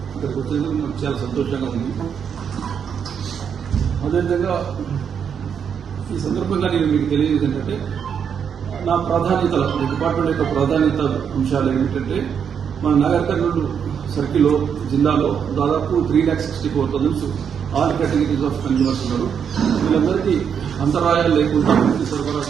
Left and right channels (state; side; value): quieter; left; 7.5 dB